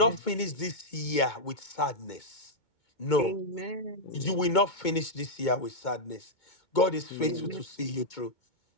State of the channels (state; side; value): late; right; 2.2 ms